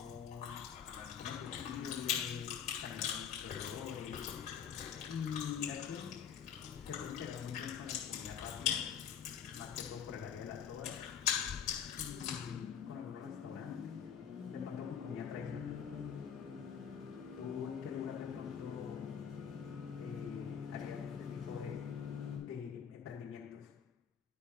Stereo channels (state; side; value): quieter; right; 8.0 dB